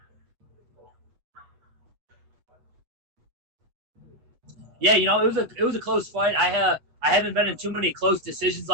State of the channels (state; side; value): late; left; 8.0 ms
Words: Yeah, it was a close fight. I haven't been in too many close decisions